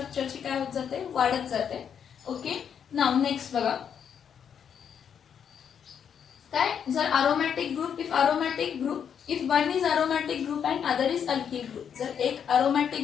काय होत जाते? वाढत जाते. ओके. नाव नेक्स्ट बघा, काय? जर aromatic group, if one is aromatic group and other is alkyl group. जर एक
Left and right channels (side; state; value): right; quieter; 7.9 dB